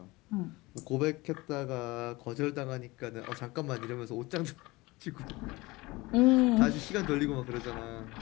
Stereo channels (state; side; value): quieter; right; 21.9 dB